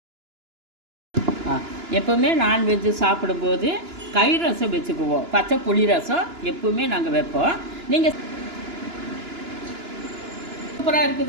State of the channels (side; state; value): left; late; 2.9 ms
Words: எப்போவுமே நான்வெஜ்ஜு சாப்பிடும்போது கறி ரசம் வச்சுக்குவோம். பச்சை புளி ரசம் எப்போவுமே நாங்கள் வைப்போம். நீங்கள் சூப்பராக